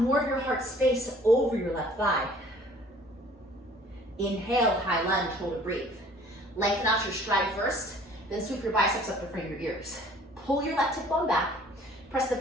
more of your heart space over your left thigh. Inhale, high lunge, hold and breathe. Lengthen out your stride first, then sweep your biceps up in front of your ears. Pull your left hip bone back. Press the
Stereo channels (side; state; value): both; normal; correlation 0.53